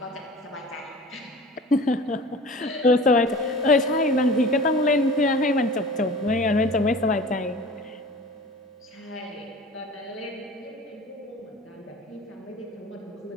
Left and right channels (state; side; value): normal; both; correlation 0.40